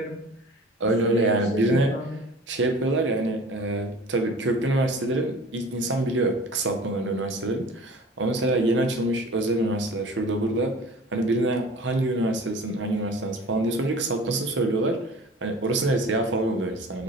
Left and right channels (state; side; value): normal; both; correlation 0.43